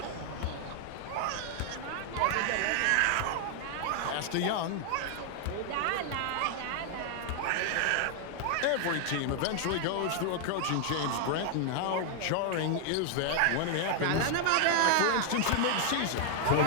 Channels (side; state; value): both; different; correlation 0.00